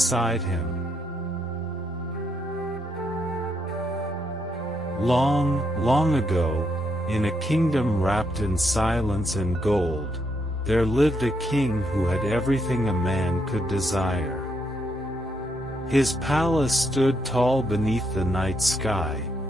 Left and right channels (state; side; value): normal; both; correlation 0.76